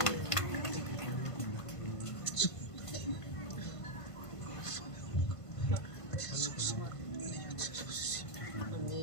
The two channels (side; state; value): right; late; 1.5 ms